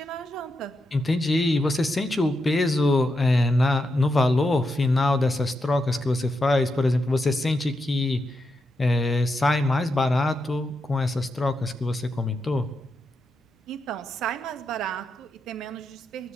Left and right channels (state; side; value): normal; both; correlation 0.85